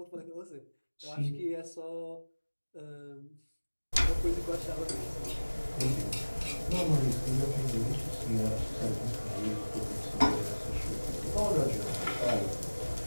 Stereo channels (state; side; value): inverted; both; correlation -1.00